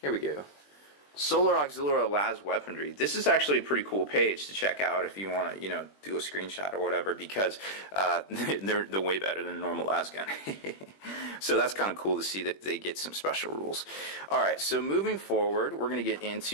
we go. Solar Auxiliary Las Weaponry. This is actually a pretty cool page to check out if you want to, do a screenshot or whatever, because they're way better than a normal las gun. So that's kind of cool to see that they get some special rules. All right, so moving forward, we're going to get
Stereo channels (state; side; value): late; right; 21 ms